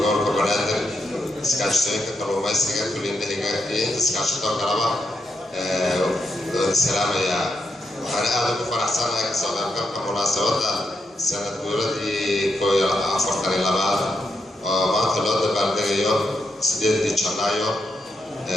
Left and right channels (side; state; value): both; normal; correlation 0.82